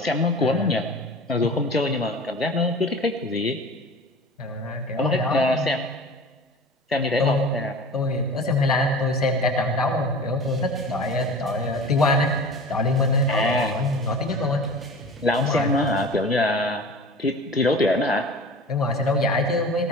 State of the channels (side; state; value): both; normal; correlation 0.38